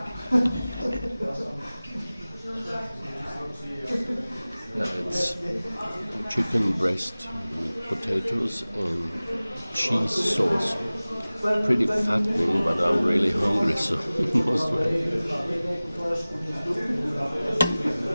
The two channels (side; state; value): both; inverted; correlation -0.98